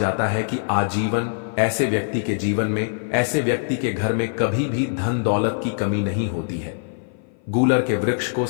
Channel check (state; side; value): silent; right; 55 dB below the other